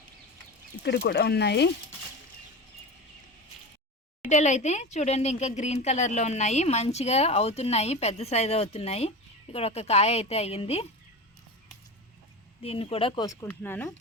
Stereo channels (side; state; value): both; normal; correlation 0.27